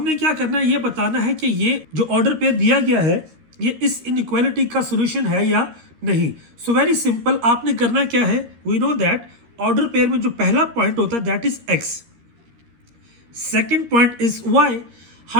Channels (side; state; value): left; late; 13 ms